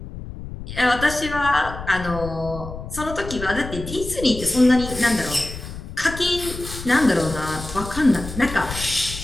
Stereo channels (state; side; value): noise; left; rumble, 10 dB below the sound